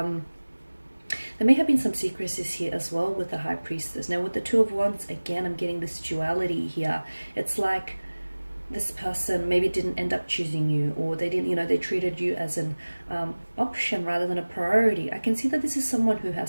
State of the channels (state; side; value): inverted; both; correlation -1.00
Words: may have been some secrecies here as well with the High Priestess. Now with the Two of Wands, again, I'm getting this duality here. It's like this person maybe didn't end up choosing you, or they didn't, they treated you as an option rather than a priority. I can see that this is someone who